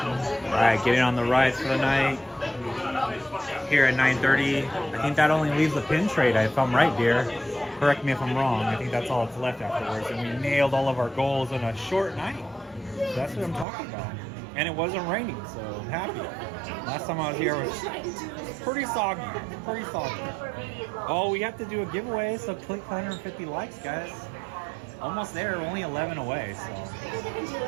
Alright, getting on the rides for the night. Here at 9:30. I think that only leaves the pin trade, if I'm right, dear. Correct me if I'm wrong. I think that's all that's left afterwards. And we nailed all of our goals in a short night. That's what I'm talking about. And it wasn't raining, so I'm happy. Last time I was here was pretty soggy. Pretty soggy. Oh, we have to do a giveaway, so click 150 likes, guys. Almost there, only 11 away, so.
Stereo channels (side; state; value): left; drops out; at 13.7 s